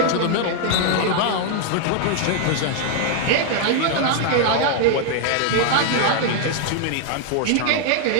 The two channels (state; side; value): different; both; correlation 0.00